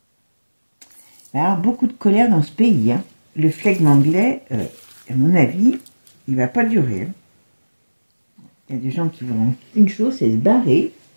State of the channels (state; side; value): inverted; both; correlation -1.00